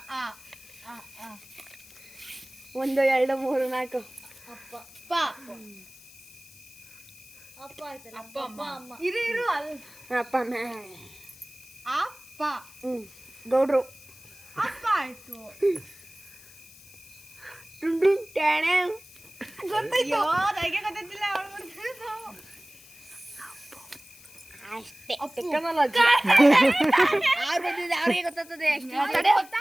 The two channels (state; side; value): noise; left; hiss, 21 dB below the sound